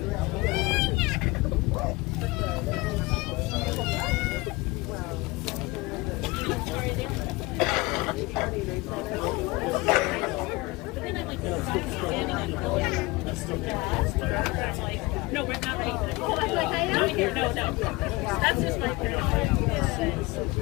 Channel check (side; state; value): right; quieter; 22.9 dB